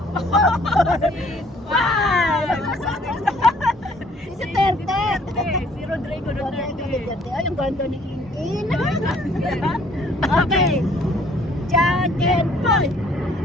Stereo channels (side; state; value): both; normal; correlation 0.59